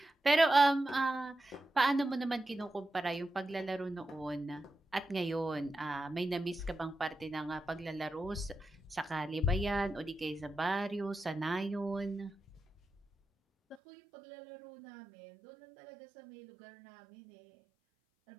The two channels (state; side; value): drops out; left; at 13.8 s